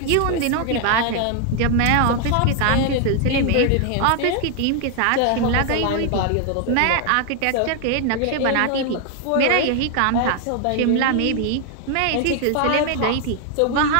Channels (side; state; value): both; different; correlation 0.00